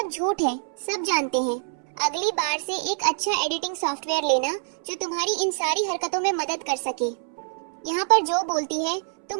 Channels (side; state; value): left; silent; 61 dB below the other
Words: झूठ है, सब जानते हैं। अगली बार से एक अच्छा एडिटिंग सॉफ्टवेयर लेना जो तुम्हारी इन सारी हरकतों में मदद कर सके। यहाँ पर जो बोलती है,